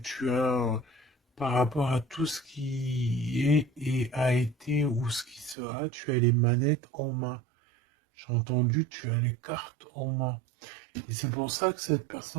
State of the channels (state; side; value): drops out; left; at 5.6 s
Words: par rapport à tout ce qui est et a été ou ce qui sera, tu as les manettes en main. J'ai entendu, tu as les cartes en main. Et c'est pour ça que cette